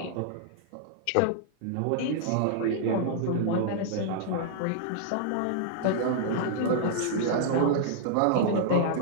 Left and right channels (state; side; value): different; both; correlation -0.01